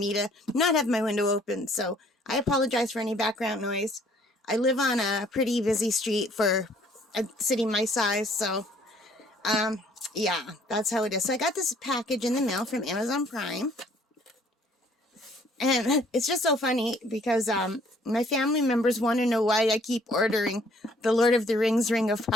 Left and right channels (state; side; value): normal; both; correlation 0.60